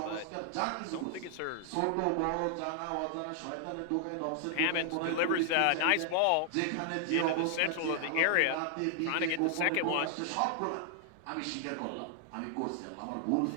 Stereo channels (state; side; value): different; both; correlation 0.00